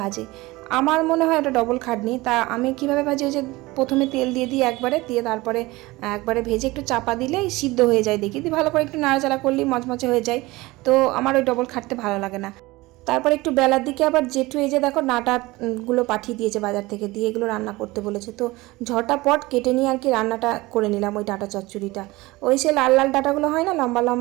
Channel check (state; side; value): quieter; left; 20.8 dB